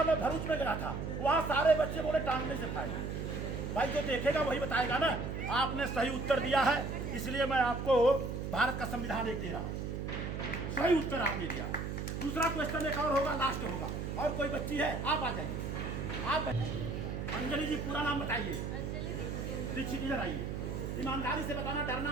मैं, भरूच में गया था, वहाँ सारे बच्चे बोले टांगने से फायदा। भाई जो देखेगा वही बताएगा ना। आपने सही उत्तर दिया है, इसलिए मैं आपको भारत का संविधान एक दे रहा हूँ। सही उत्तर आपने दिया। दूसरा क्वेश्चन एक और होगा, लास्ट होगा। और कोई बच्ची है? आप आ जाइए। आप अंजलि जी, पूरा नाम बताइए। दीक्षित, इधर आइए। ईमानदारी से बताना,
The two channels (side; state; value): right; noise; hum, 4 dB below the sound